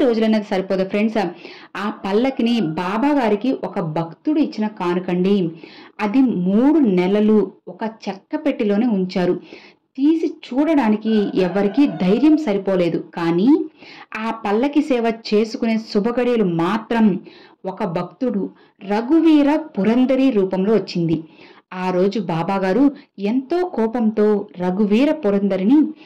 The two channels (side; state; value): both; identical; correlation 1.00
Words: రోజులనేది సరిపోదు ఫ్రెండ్స్. ఆ పల్లకిని బాబా గారికి ఒక భక్తుడు ఇచ్చిన కానుకండి. అది 3 నెలలు ఒక చెక్క పెట్టిలోనే ఉంచారు. తీసి చూడడానికి ఎవరికీ ధైర్యం సరిపోలేదు. కానీ ఆ పల్లకి సేవ చేసుకునే శుభగడియలు మాత్రం ఒక భక్తుడు రఘువీర పురందరి రూపంలో వచ్చింది. ఆ రోజు బాబాగారు ఎంతో కోపంతో రఘువీర పురందరిని